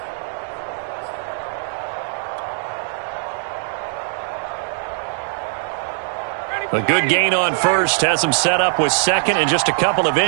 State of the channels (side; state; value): left; silent; digital silence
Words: A good gain on first has them set up with second and just a couple of